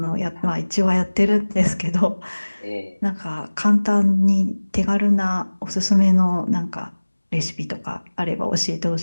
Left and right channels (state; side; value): inverted; both; correlation -1.00